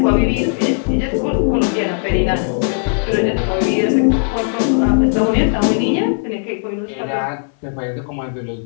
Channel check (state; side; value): silent; right; 62 dB below the other